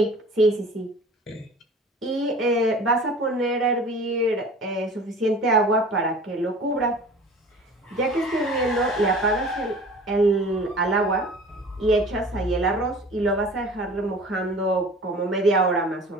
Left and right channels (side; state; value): both; normal; correlation 0.43